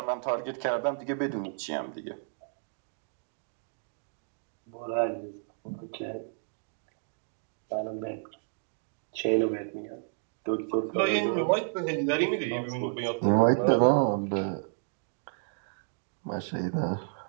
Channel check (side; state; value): left; silent; digital silence